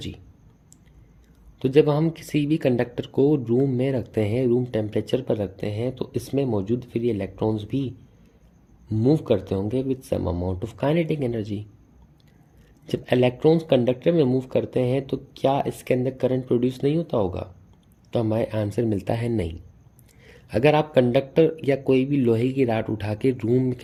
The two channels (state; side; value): identical; both; correlation 1.00